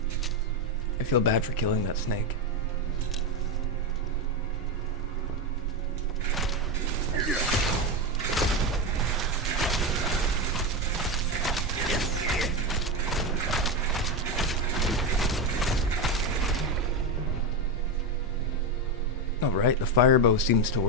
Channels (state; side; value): normal; both; correlation 0.12